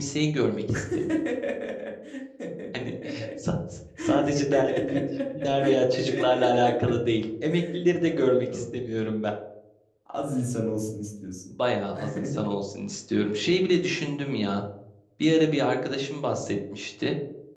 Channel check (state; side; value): identical; both; correlation 1.00